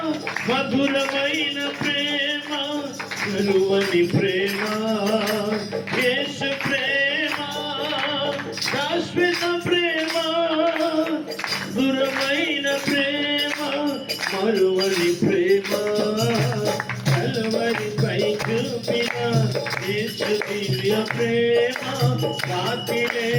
మధురమైన ప్రేమ, కలువని ప్రేమ. యేసు ప్రేమ శాశ్వత ప్రేమ, మధురమైన ప్రేమ, మరువని ప్రేమ. కలువరిపై చూపిన యేసు దివ్య ప్రేమ, సాటి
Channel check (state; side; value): identical; both; correlation 1.00